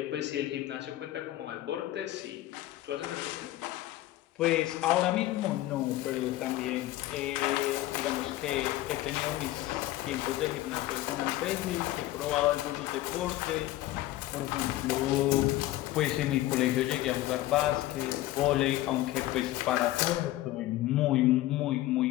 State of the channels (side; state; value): right; quieter; 15.9 dB